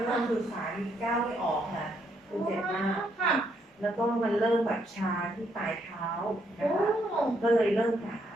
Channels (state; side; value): normal; both; correlation 0.74